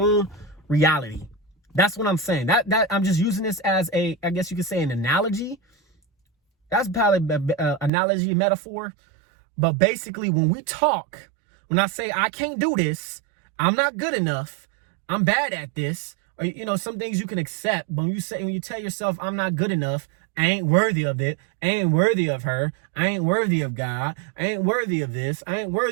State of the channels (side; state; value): left; drops out; at 7.9 s